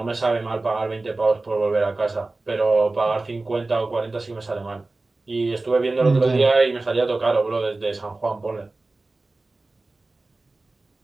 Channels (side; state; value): left; quieter; 3.2 dB